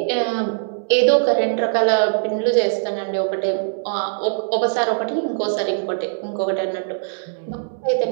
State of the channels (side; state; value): left; silent; 65 dB below the other